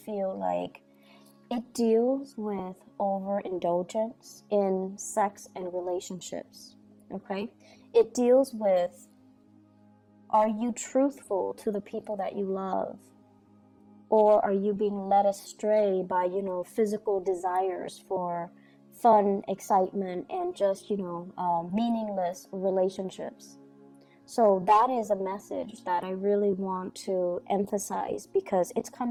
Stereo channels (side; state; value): both; identical; correlation 1.00